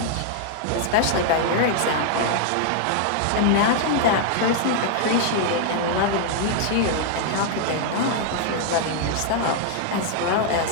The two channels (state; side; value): different; both; correlation 0.00